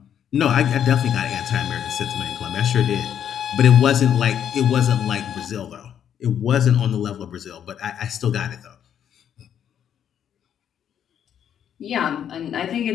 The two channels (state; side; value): quieter; right; 9.3 dB